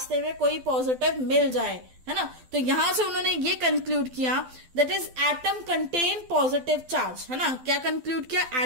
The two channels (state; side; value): late; left; 12 ms